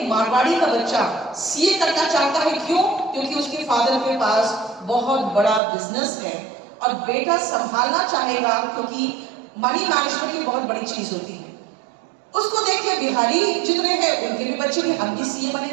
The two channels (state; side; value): drops out; left; at 5.6 s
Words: मारवाड़ी का बच्चा CA करना चाहता है। क्यों? क्योंकि उसके फादर के पास बहुत बड़ा बिजनेस है और बेटा संभालना चाहेगा, क्योंकि मनी मैनेजमेंट की बहुत बड़ी चीज होती है। उसको देख के बिहारी जितने हैं उनके भी बच्चे भी, हम भी CA